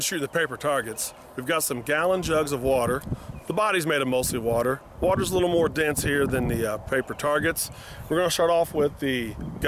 the paper targets, we've got some gallon jugs of water. The body's made of mostly water. Water's a little more dense here than the paper targets. We're going to start off with the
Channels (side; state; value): both; identical; correlation 1.00